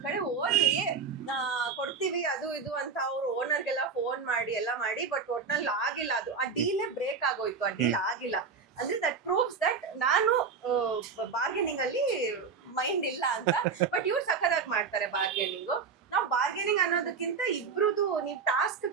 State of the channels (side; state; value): left; quieter; 5.5 dB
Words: ಕಡೆ ಹೋದ್ವಿ, ಕೊಡ್ತೀವಿ ಅದು ಇದು ಅಂತ ಅವ್ರು ಓನರ್ಗೆಲ್ಲ ಫೋನ್ ಮಾಡಿ ಎಲ್ಲ ಮಾಡಿ, ಬಟ್ ಒಟ್ನಲ್ಲಿ ಆಗಿಲ್ಲ. ಅದು ಆ ಡೀಲೇ ಬ್ರೇಕ್ ಆಗೋಯ್ತು. ಆ ಡೀಲ್ ಆಗಿಲ್ಲ ಅಂದ್ರೆ ದಟ್ ಪ್ರೂವ್ಸ್ ದಟ್ ನಾನು ಬಾರ್ಗೇನಿಂಗ್ ಅಲ್ಲಿ ಮೈಂಡ್ ಇಲ್ಲ ಅಂತ. ಬಟ್ ಇವ್ರು ಸಖತ್ತಾಗಿ ಮಾಡ್ತಾರೆ ಬಾರ್ಗೇನಿಂಗು. ನಾವು ಬಾರ್ಗೇನಿಂಗ್ ಅನ್ನೋದಕ್ಕಿಂತ ಇಬ್ರುದು ನೀವ್ ಟಾಸ್ಕ್